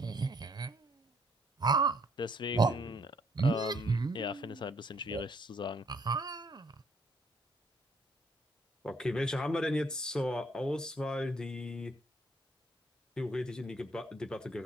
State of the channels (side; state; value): both; normal; correlation 0.67